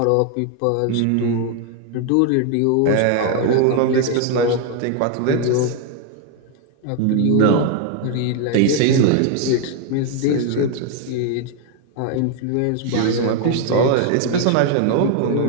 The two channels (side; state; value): both; different; correlation 0.01